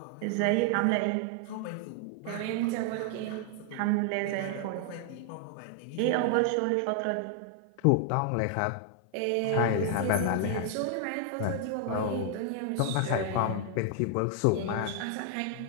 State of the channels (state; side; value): different; both; correlation 0.00